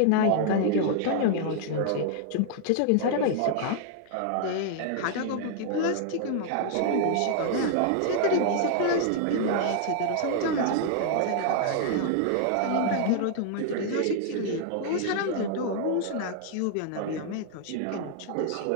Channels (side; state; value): both; different; correlation 0.00